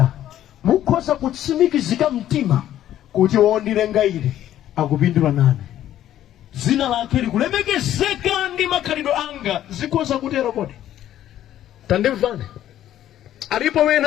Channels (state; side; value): quieter; right; 12.1 dB